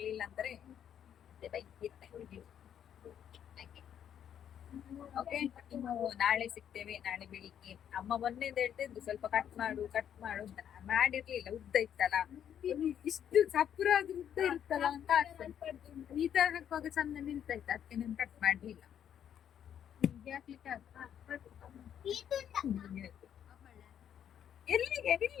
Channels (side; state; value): right; quieter; 9.4 dB